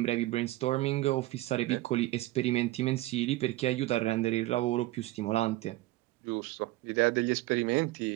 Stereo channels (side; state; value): left; quieter; 17.8 dB